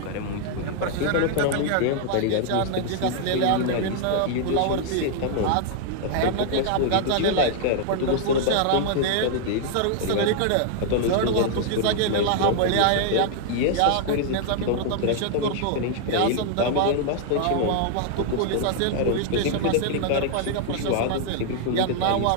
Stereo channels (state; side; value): different; both; correlation 0.00